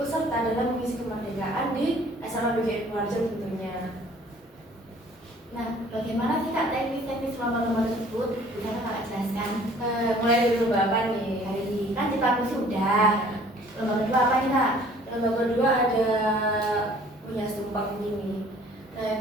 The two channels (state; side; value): normal; both; correlation 0.54